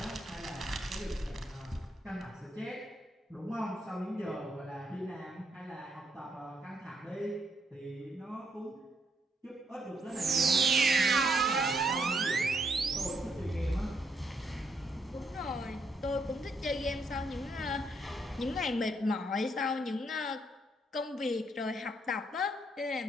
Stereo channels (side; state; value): both; normal; correlation 0.75